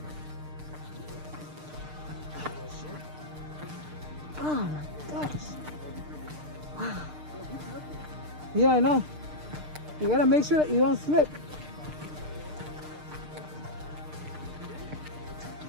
Oh my gosh. Wow. Yeah, I know. You gotta make sure that you don't slip.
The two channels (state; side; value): late; left; 6.6 ms